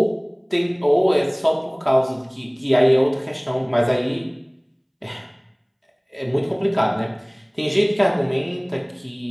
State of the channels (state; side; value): identical; both; correlation 1.00